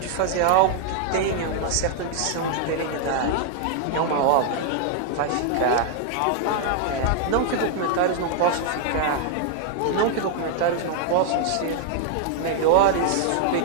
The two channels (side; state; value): both; different; correlation 0.00